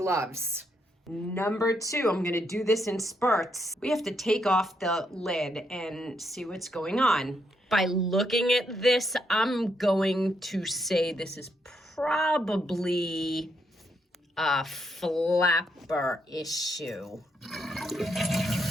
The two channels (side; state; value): both; normal; correlation 0.77